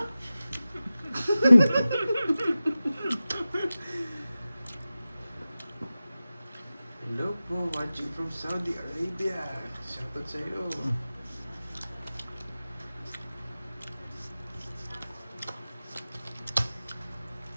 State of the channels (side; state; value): both; inverted; correlation -0.95